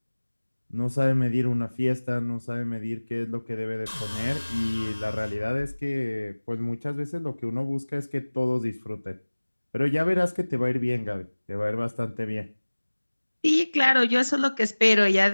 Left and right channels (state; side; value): inverted; both; correlation -1.00